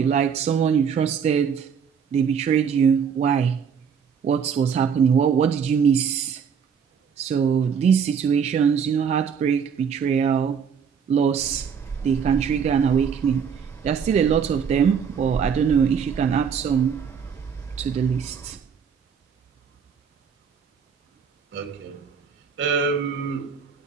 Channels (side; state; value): left; quieter; 7.0 dB